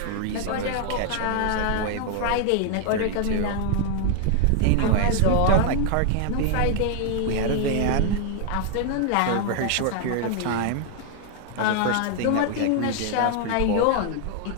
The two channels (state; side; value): different; both; correlation 0.00